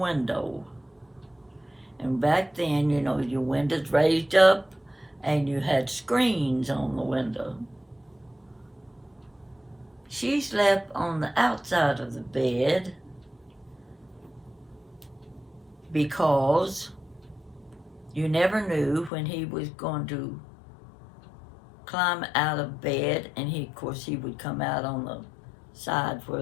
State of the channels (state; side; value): drops out; right; at 19.1 s